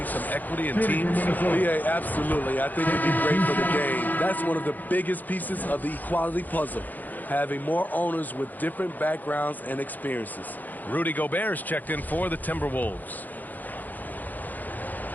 some equity in teams? Yeah, absolutely. I think it'd be great for the game. That's one of the biggest pieces of the equality puzzle, having more owners with different backgrounds and experiences. Rudy Gobert's checked in for the Timberwolves.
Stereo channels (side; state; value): right; late; 0.084 ms